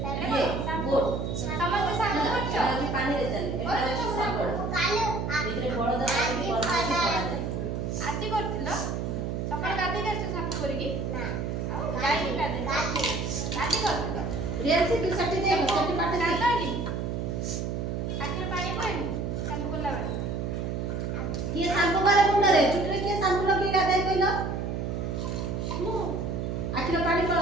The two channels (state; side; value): noise; right; hum, 2 dB below the sound